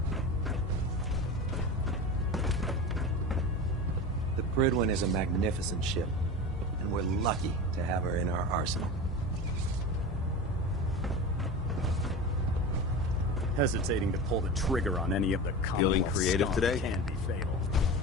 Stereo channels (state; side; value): normal; both; correlation 0.28